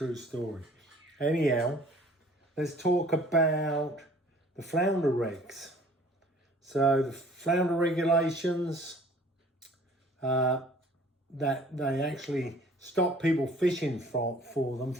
story. Anyhow, let's talk about the flounder regs. So the flounder regulations, that they actually stop people fishing for them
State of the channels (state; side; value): normal; both; correlation 0.52